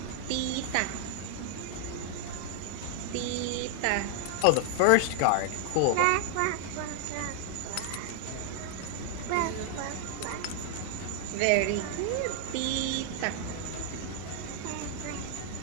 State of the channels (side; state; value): both; different; correlation 0.00